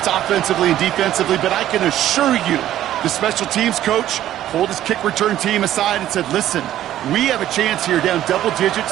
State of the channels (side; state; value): left; quieter; 12.6 dB